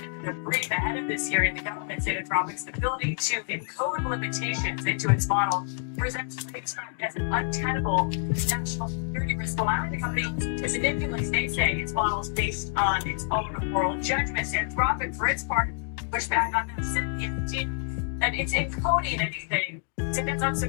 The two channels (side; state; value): right; silent; digital silence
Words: They're pretty ahead of this hearing. The government said Anthropic's ability to encode limitations into its model presents as an untenable national security risk, allowing the company to manipulate, they say, its models based on its own moral judgments. Anthropic, for its part, pushed back on that, saying that it's encoding anything. Since it's